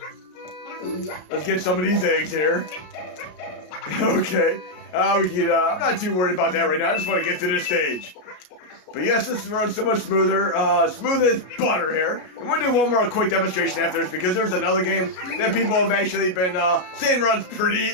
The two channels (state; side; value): late; right; 33 ms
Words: Let's get some of these eggs here. Okay. I'm not too worried about that right now. I just want to get to this stage. But yes, this is running so much smoother, smooth as butter here. And we'll do one more quick demonstration after this, because there's another game that people have actually been saying runs pretty